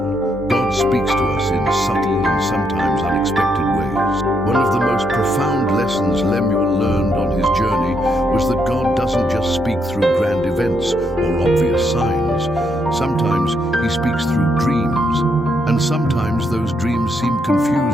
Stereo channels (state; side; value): normal; both; correlation 0.76